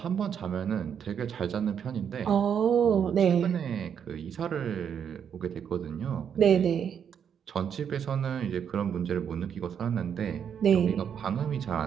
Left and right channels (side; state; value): left; quieter; 8.0 dB